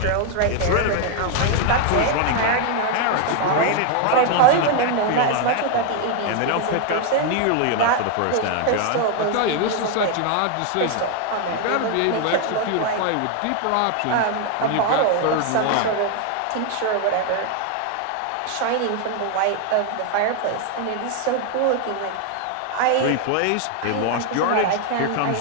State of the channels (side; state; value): both; different; correlation 0.01